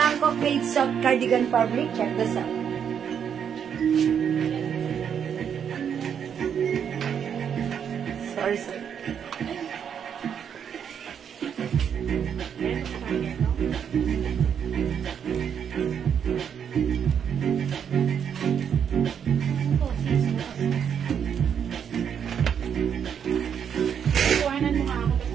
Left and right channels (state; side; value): quieter; left; 8.0 dB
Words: made soft cardigan fabric. Check this out. Sorry. Kuhanan mo nga ako